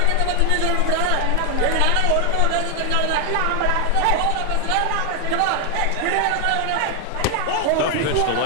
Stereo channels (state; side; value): different; both; correlation 0.00